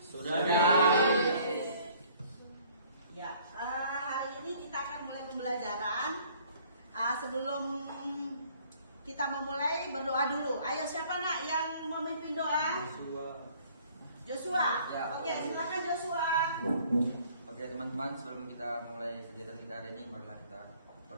Sudah. Ya. Hari ini kita akan mulai pembelajaran. Sebelum kita memulai, berdoa dulu. Ayo, siapa nak yang memimpin doa? Joshua. Ya. Oke, silakan Joshua. Oke teman-teman, sebelum kita mulai kegiatan kita hari ini, marilah kita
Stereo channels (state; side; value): inverted; both; correlation -0.57